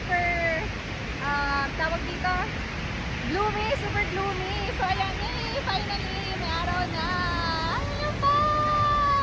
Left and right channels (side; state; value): both; identical; correlation 1.00